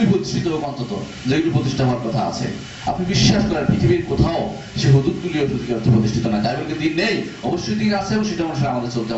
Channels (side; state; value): both; identical; correlation 1.00